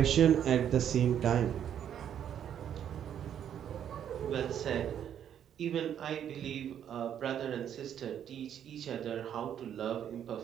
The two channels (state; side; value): quieter; left; 9.5 dB